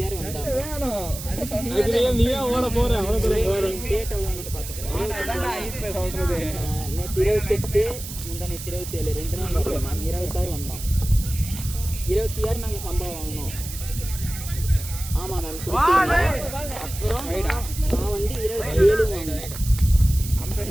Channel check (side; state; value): right; noise; hiss, 10 dB below the sound